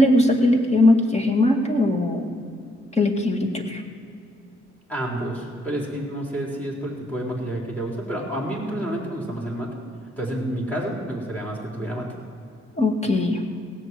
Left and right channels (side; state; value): both; normal; correlation 0.74